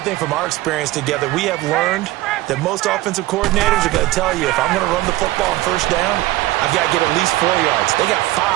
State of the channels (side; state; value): left; quieter; 17.8 dB